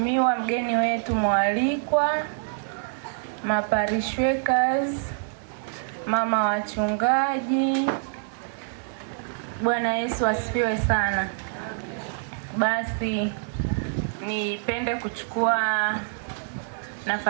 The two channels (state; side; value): silent; left; digital silence